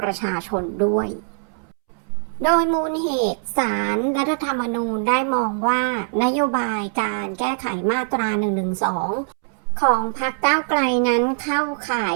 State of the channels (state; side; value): silent; left; 64 dB below the other